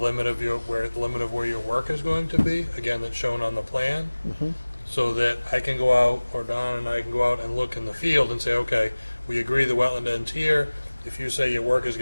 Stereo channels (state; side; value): inverted; both; correlation -1.00